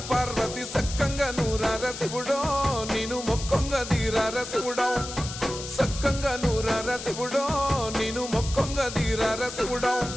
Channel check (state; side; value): noise; left; hiss, 10 dB below the sound